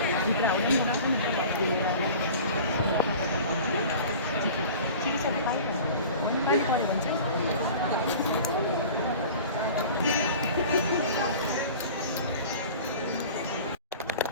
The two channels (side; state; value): both; inverted; correlation -0.41